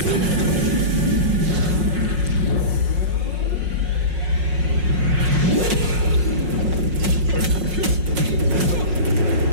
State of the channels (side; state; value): left; late; 5.5 ms